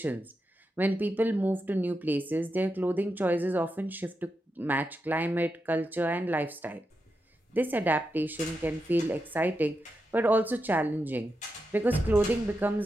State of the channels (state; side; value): normal; both; correlation 0.87